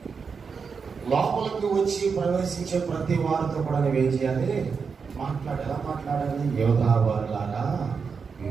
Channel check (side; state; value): left; quieter; 5.6 dB